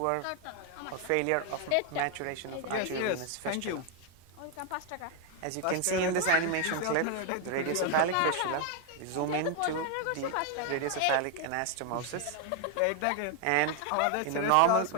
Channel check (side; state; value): both; different; correlation 0.01